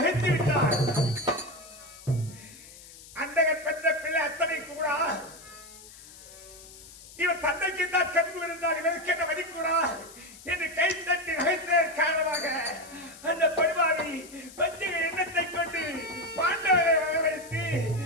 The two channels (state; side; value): noise; left; hiss, 19 dB below the sound